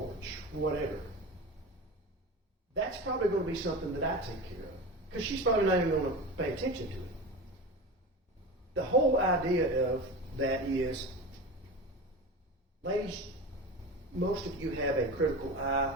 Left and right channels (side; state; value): both; normal; correlation 0.29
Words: whatever, that's probably going to be something that I take care of. Because she's probably not even going to pay attention to it. The whole idea of that is, ladies, most of you have a critical eye